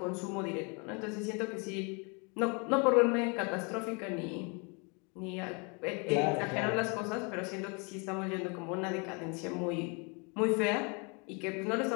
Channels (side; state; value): right; quieter; 32.9 dB